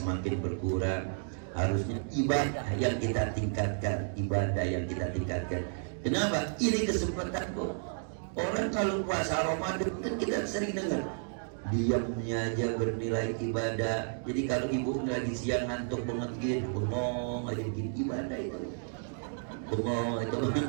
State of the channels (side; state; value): left; silent; digital silence